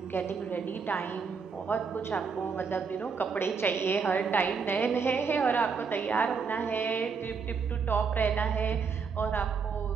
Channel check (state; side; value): quieter; left; 5.5 dB